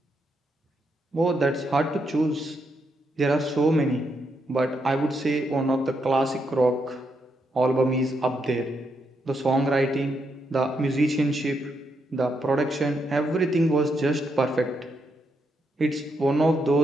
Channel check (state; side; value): normal; both; correlation 0.80